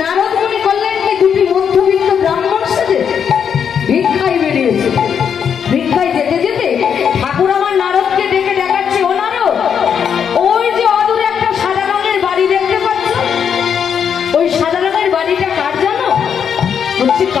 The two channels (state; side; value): quieter; right; 7.6 dB